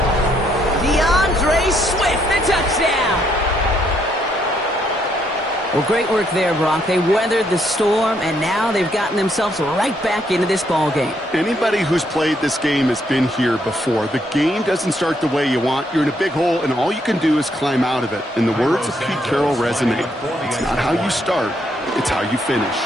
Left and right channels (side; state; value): both; normal; correlation 0.73